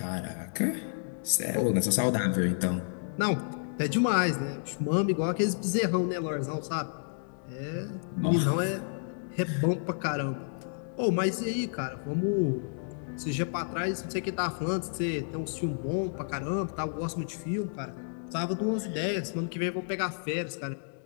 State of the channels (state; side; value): silent; right; digital silence